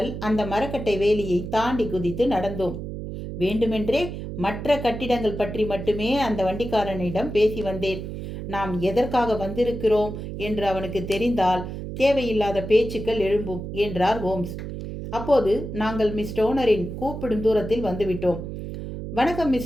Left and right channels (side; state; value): right; noise; hum, 7 dB below the sound